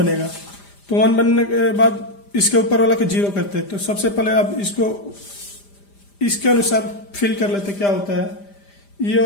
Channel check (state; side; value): late; right; 5.0 ms